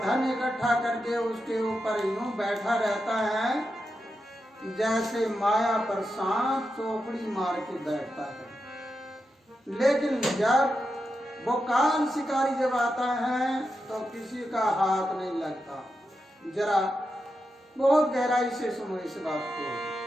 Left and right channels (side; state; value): both; normal; correlation 0.88